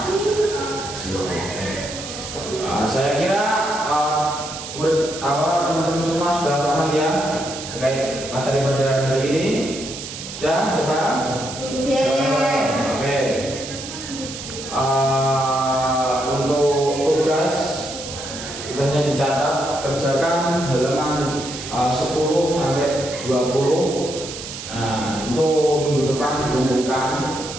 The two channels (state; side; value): noise; right; hiss, 10 dB below the sound